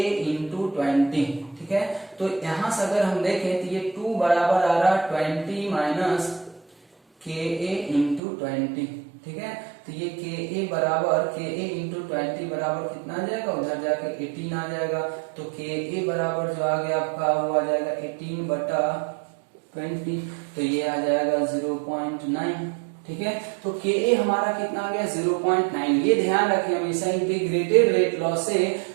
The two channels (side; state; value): left; drops out; at 8.2 s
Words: इंटू 20। ठीक है, तो यहां से अगर हम देखें तो ये 2 बराबर आ रहा 20 माइनस KA इंटू 20। ठीक है, तो ये KA बराबर KA इंटू 20 बराबर कितना आ जाएगा, उधर जाके 18 आ जाएगा। तो KA बराबर जो आ गया आपका वो आ जाएगा 18 बटा 20, तो ये आ जाएगा 0.9। ठीक है, तो KA हमारा कितना आ गया 0.9। ये ध्यान रखें हमेशा इंटीग्रेटेड रेट लॉ से